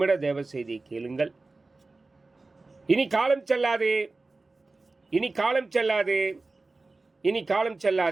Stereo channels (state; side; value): quieter; left; 3.4 dB